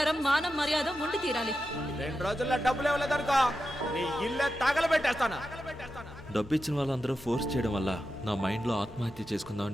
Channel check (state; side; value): normal; both; correlation 0.90